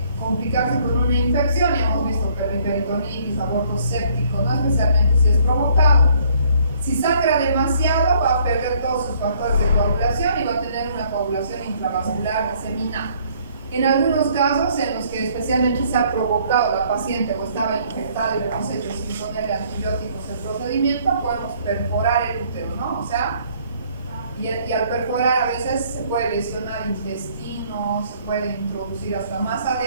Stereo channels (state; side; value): inverted; both; correlation -0.62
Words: complicarse con una infección, y hemos visto que la peritonitis, aborto séptico, no especialmente si es provocado. Si sangra demasiado, va a perder todos sus factores de coagulación y va a tener una coagulación intravascular diseminada. En algunos casos en los que especialmente se ha provocado la paciente o estaba infectada y le hemos hecho sin ponerle antibióticos el procedimiento, podemos perforar el útero, ¿no? O sea, y al perforar a veces se puede lesionar intestino, se puede introducir hasta más